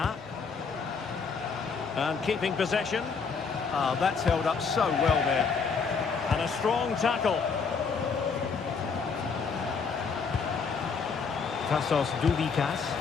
And keeping possession. That's held up so well there. And a strong tackle. Tassos Doudikas.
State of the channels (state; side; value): quieter; right; 5.4 dB